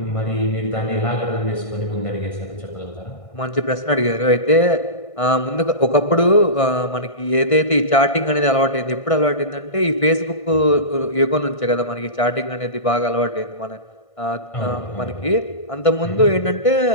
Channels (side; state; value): right; late; 1.6 ms